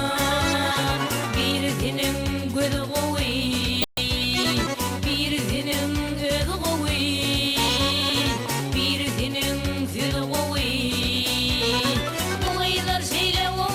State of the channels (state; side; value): identical; both; correlation 1.00